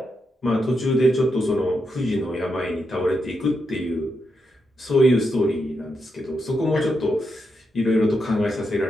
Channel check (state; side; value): normal; both; correlation 0.84